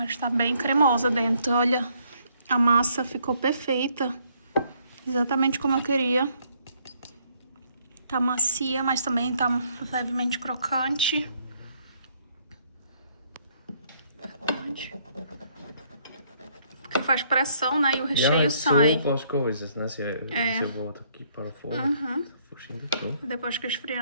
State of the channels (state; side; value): inverted; both; correlation -0.67